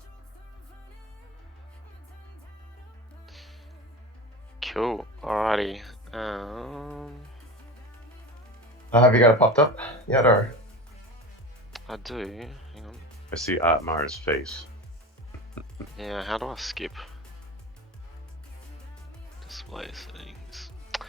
Cool. Alrighty. Have you got it popped up yet, or? I do. Hang on. I see Otmar's face. Yeah, how do I skip? Display settings.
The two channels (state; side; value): normal; both; correlation 0.28